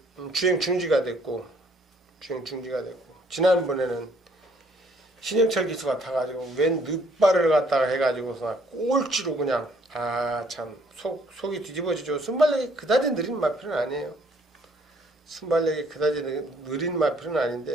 주행 중지가 됐고, 지난번에는 신영철 기수가 타가지고 웬 늦발을 갖다가 해가지고서 꼴찌로 그냥, 참 속이 뒤집어지죠. 순발력이 그다지 느린 마필은 아니에요. 순발력이 그다지 느린 마필은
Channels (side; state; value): both; normal; correlation 0.63